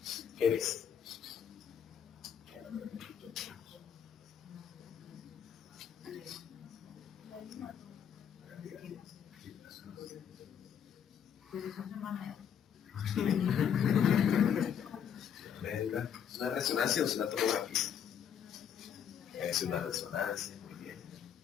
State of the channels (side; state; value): right; quieter; 8.4 dB